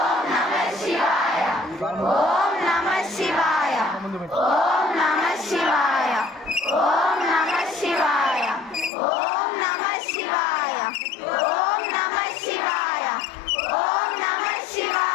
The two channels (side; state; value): right; drops out; at 8.9 s